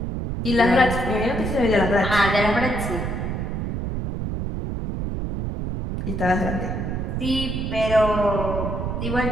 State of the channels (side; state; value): right; noise; rumble, 3 dB below the sound